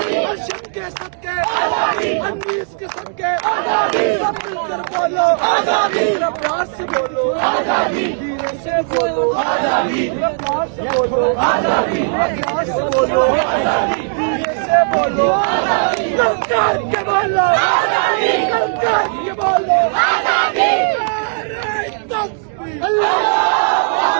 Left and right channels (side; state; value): left; silent; digital silence